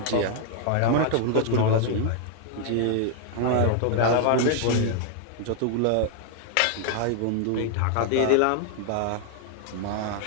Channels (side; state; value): both; different; correlation 0.00